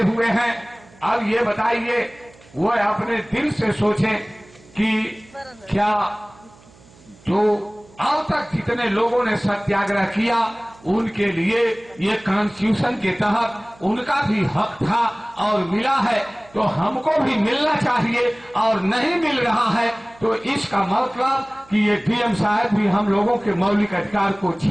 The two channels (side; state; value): right; noise; hum, 26 dB below the sound